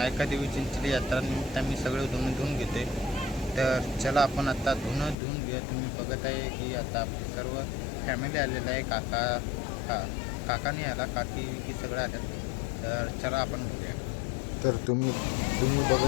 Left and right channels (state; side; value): drops out; right; at 5.2 s